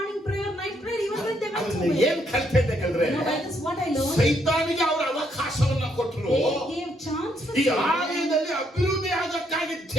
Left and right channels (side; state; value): both; normal; correlation 0.73